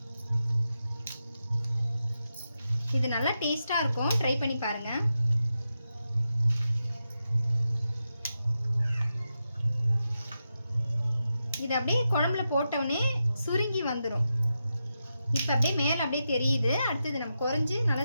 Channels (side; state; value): both; inverted; correlation -0.88